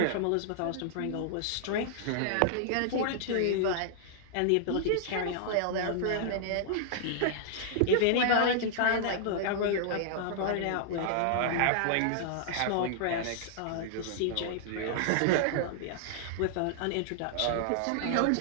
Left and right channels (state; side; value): different; both; correlation -0.01